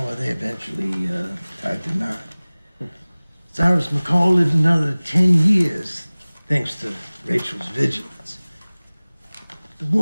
they eventually tied the knot. Cyrus McCall lived another 10 years, thanks to Rachel's vigilance. The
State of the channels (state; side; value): inverted; both; correlation -0.99